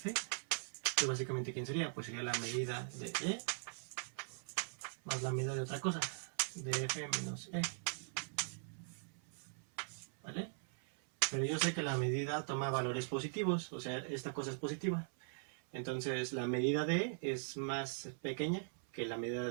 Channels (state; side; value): silent; left; 51 dB below the other